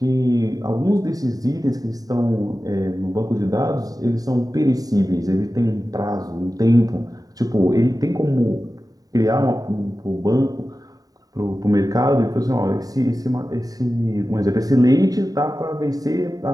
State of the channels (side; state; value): left; late; 0.18 ms